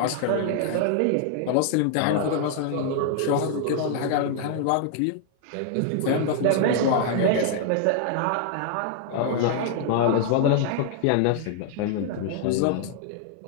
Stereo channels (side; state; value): both; different; correlation 0.00